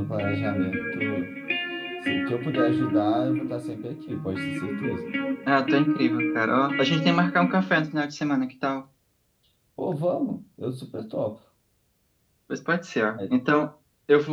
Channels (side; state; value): both; identical; correlation 1.00